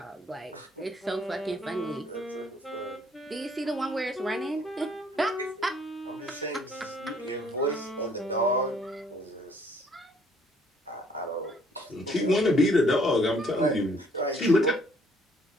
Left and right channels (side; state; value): both; normal; correlation 0.62